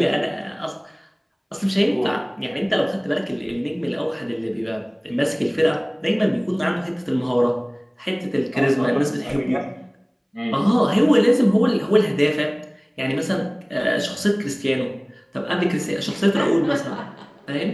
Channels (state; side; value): identical; both; correlation 1.00